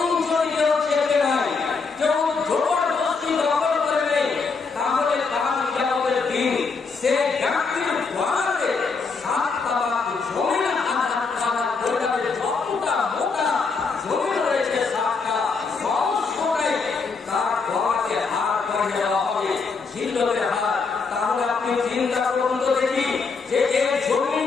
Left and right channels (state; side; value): quieter; right; 4.7 dB